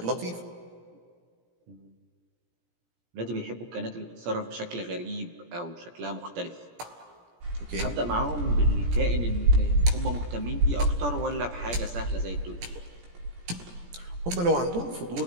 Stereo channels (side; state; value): left; late; 17 ms